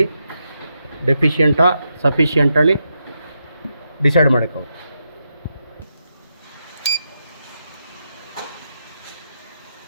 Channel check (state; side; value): inverted; both; correlation -0.83